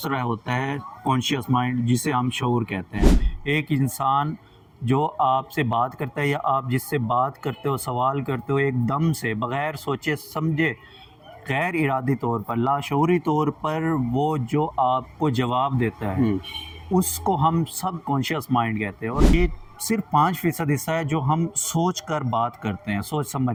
होता है कॉन्शियस माइंड जिसे हम शऊर कहते हैं। एक इंसान जो आपसे बात करता है या आप जिससे बात करते हो, सवाल करते हो, एकदम से बग़ैर सोचे समझे गैर इरादी तौर पर, लाशऊरी तौर पर वो जो आपको जवाब देता है उसको हम सबकॉन्शियस माइंड कहते हैं। और ये सिर्फ 5% हिस्सा है जो हम सोच कर बात करते हैं, सोच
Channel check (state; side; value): identical; both; correlation 1.00